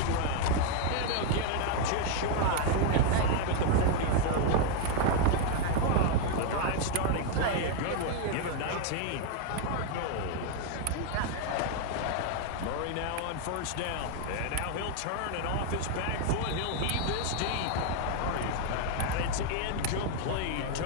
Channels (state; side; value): different; both; correlation 0.01